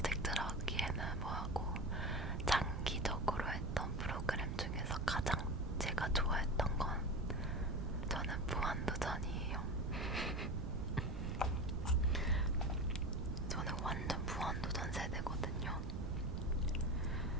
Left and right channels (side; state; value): right; noise; rumble, 1 dB below the sound